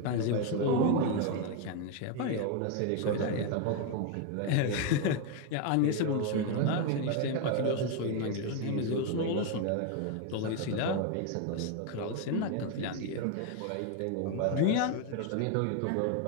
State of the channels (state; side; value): different; both; correlation 0.01